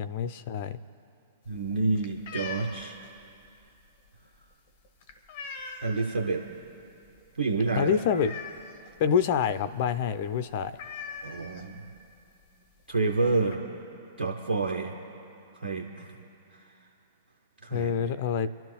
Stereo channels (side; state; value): both; inverted; correlation -0.50